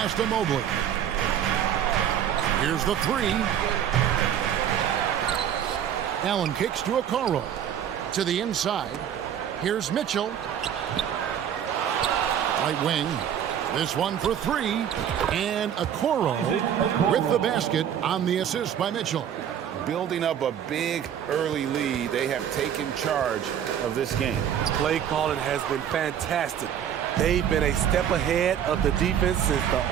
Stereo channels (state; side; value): quieter; left; 9.4 dB